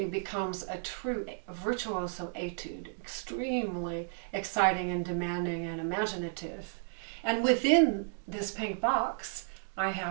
becomes a true virtuoso etude, extremely exciting and demanding and imaginative. And within this pink box, I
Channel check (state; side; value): silent; left; digital silence